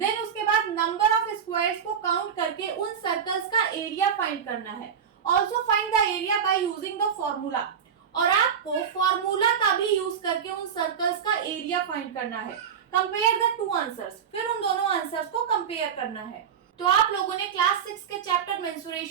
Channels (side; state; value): left; quieter; 7.7 dB